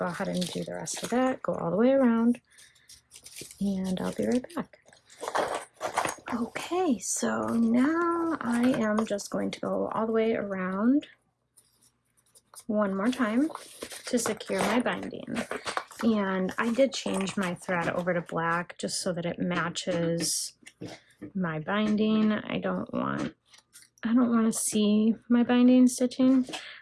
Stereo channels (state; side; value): identical; both; correlation 1.00